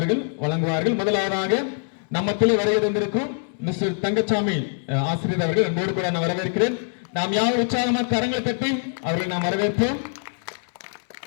வழங்குவார்கள். முதலாவதாக நம்மத்திலே வருகை தந்திருக்கும் மிஸ்டர் தங்கச்சாமி ஆசிரியர் அவர்கள் அன்போடு கூட நான் வரவேற்கிறேன். நாம் யாரும் உற்சாகமாக கரங்களை தட்டி அவர்களை நாம் வரவேற்போம்.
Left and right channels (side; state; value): right; silent; 63 dB below the other